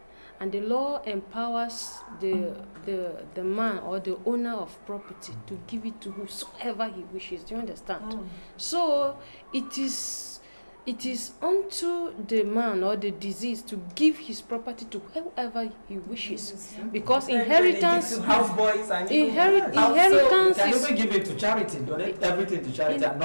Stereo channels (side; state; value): both; inverted; correlation -1.00